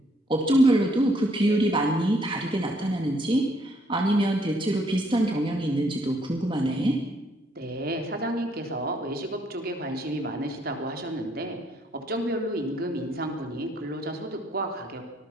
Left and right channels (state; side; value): normal; both; correlation 0.69